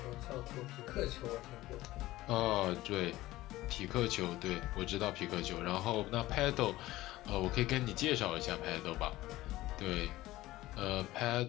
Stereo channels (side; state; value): right; quieter; 17.0 dB